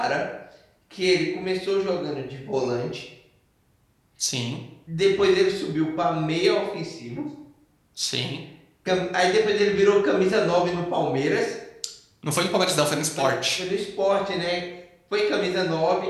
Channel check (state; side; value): identical; both; correlation 1.00